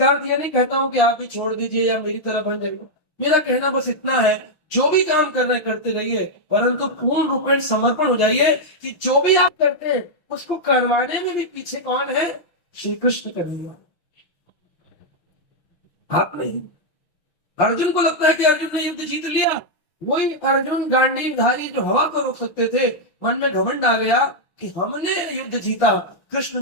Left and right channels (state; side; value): late; right; 6.2 ms